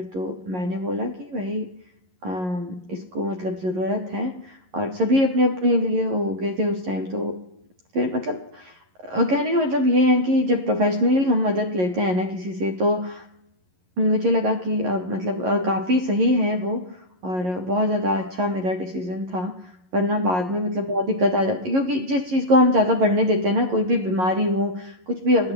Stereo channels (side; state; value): left; late; 11 ms